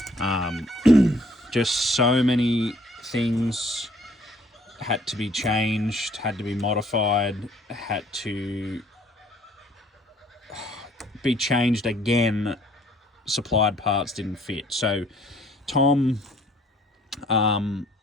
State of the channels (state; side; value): normal; both; correlation 0.60